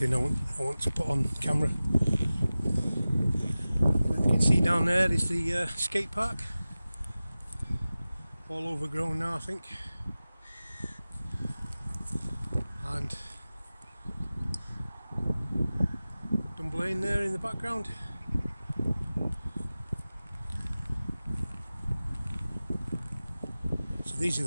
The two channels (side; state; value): both; inverted; correlation -0.97